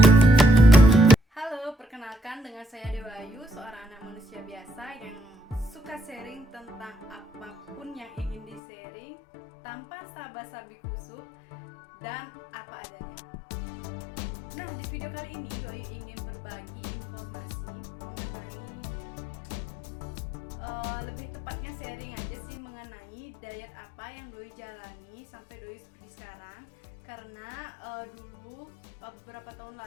Dengan saya Dewa Ayu, seorang anak manusia biasa yang suka sharing tentang apapun yang ingin di-sharing tanpa sabi kusuk dan apa adanya. Nah, di video kali ini Doi ingin berbagi informasi mengenai lebih tepatnya sharing aja sih mengenai diet apa yang Doi jalani sampai Doi seperti sekarang. Karena dulu beberapa tahun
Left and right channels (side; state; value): right; drops out; at 8.6 s